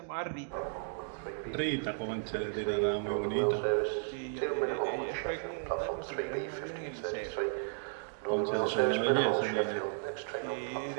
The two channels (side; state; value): left; silent; digital silence